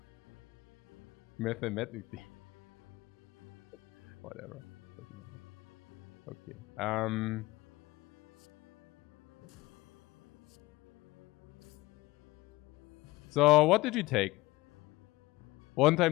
Mathematically. Whatever. Okay. So what did you take? 1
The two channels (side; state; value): right; quieter; 20.0 dB